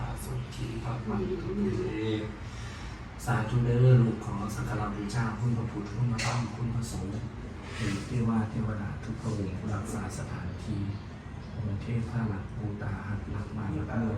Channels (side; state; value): both; identical; correlation 1.00